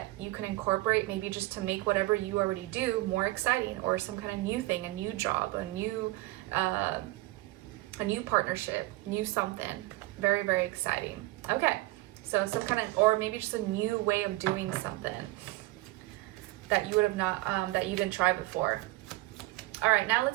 you can incorporate, maybe just to make whatever you already do more exciting, or some kind of new thing, a new job, a new partnership, new something. Very, very exciting. Okay, so some kind of, or maybe just a new way of doing something that you would have not, that you didn't try before. All right, now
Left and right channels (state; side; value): quieter; left; 19.9 dB